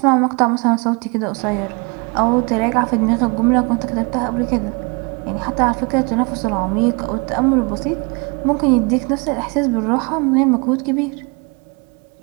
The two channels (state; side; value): quieter; left; 31.0 dB